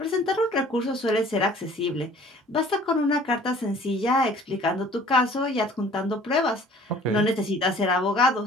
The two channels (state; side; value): normal; both; correlation 0.52